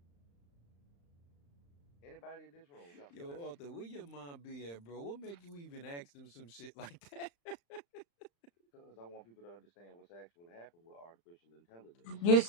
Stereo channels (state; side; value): late; right; 35 ms